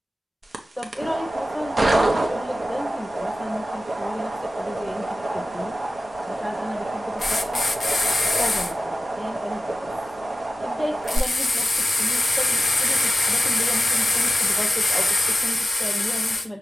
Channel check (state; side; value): normal; both; correlation 0.95